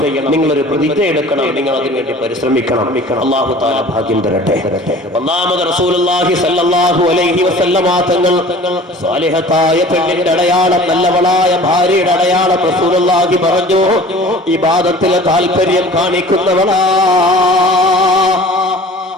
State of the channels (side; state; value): both; normal; correlation 0.45